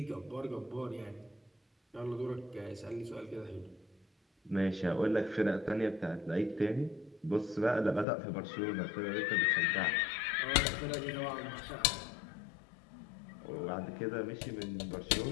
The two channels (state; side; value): drops out; right; at 8.1 s